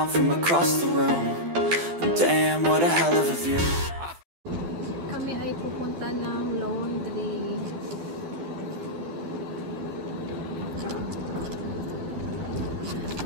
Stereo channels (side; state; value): left; late; 12 ms